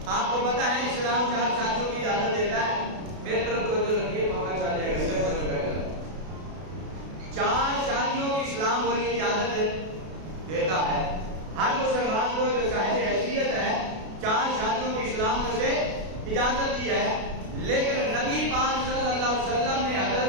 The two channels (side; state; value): left; late; 32 ms